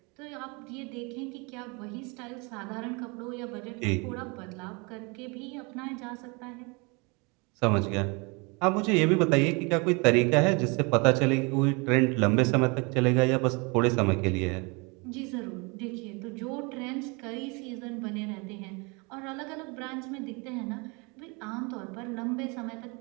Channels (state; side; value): quieter; left; 29.6 dB